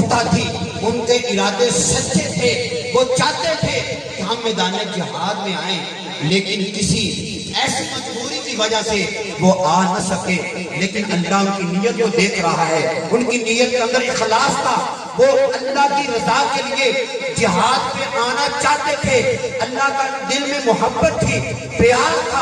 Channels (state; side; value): identical; both; correlation 1.00